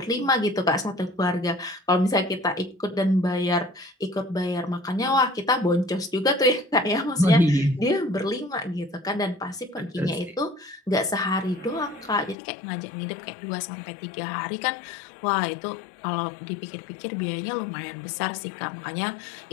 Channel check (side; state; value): right; drops out; at 12.4 s